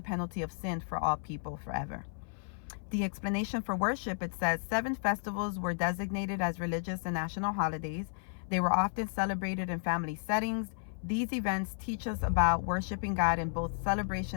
penalty of sin for all people forever. The explanation for worship, it says 7 festivals were designated as religious and national holidays. They were often celebrated in family settings. These events teach us about worshiping God in both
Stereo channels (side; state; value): right; silent; 56 dB below the other